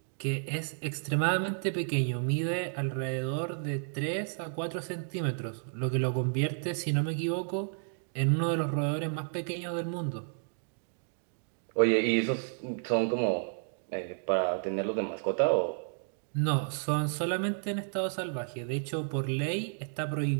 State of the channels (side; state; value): left; silent; digital silence